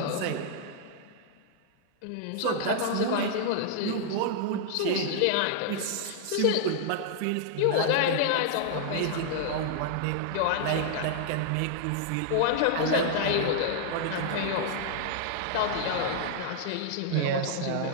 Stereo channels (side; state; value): both; different; correlation -0.01